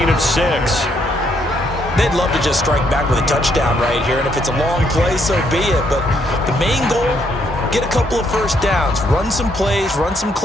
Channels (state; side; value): normal; both; correlation 0.72